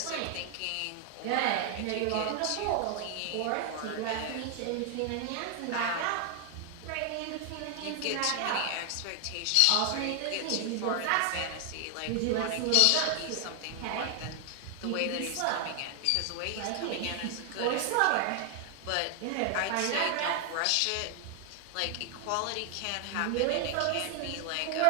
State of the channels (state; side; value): different; both; correlation 0.00